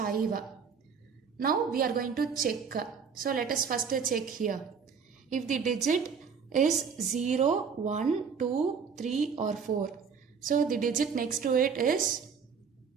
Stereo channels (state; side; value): quieter; left; 6.2 dB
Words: Now we are going to check. So let us first check here. If the digit is 0, 1, 2, 3 or 4. So the digit next to it is